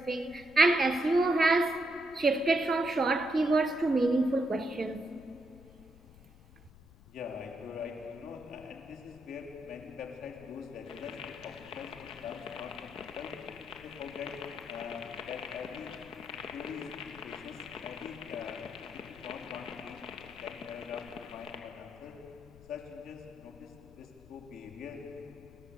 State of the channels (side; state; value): left; noise; rumble, 22 dB below the sound